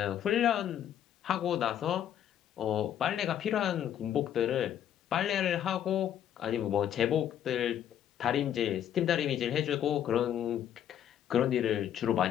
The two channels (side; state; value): right; quieter; 10.3 dB